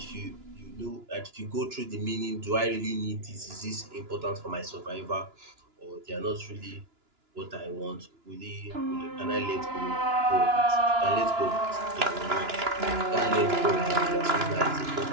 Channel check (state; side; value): late; left; 2.9 ms